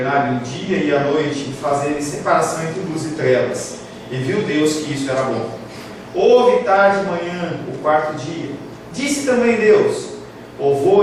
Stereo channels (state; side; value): identical; both; correlation 1.00